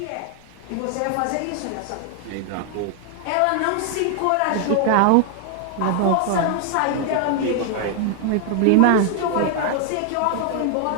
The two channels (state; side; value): different; both; correlation 0.00